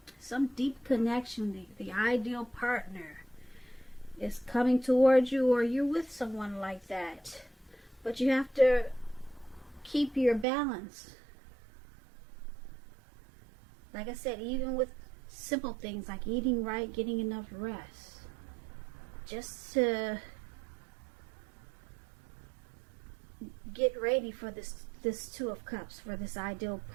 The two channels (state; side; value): drops out; left; at 10.5 s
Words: some deep connection. The ideal partner is coming towards you, or you're with someone like that. But you have to keep your balance. Like I said, even with simple things like eating right, getting enough rest, just to get ready for this Two of Cups, for this ideal